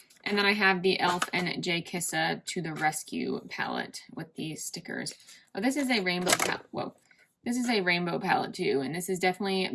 And then I have the e.l.f. and J. Kissa To The Rescue palette with these stickers. Oh, this is a rainbow palette. Whoa. This is a rainbow palette too, and this is definitely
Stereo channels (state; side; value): identical; both; correlation 1.00